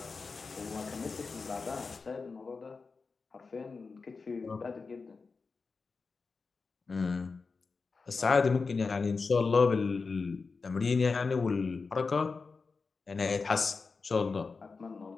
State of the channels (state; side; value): quieter; right; 4.5 dB